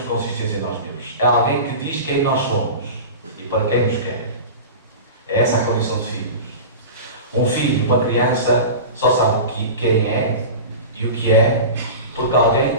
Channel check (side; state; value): both; inverted; correlation -0.31